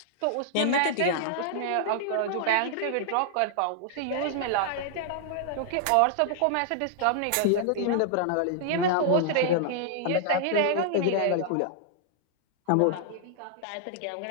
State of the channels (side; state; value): both; different; correlation -0.01